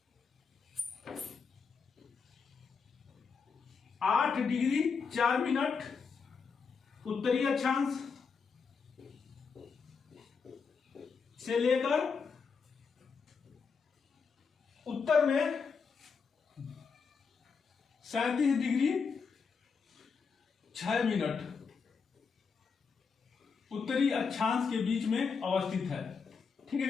8 डिग्री 4 मिनट उत्तरी अक्षांश से लेकर उत्तर में 37 डिग्री 6 मिनट उत्तरी अक्षांश के बीच में अवस्थित है। ठीक है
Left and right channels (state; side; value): quieter; right; 5.5 dB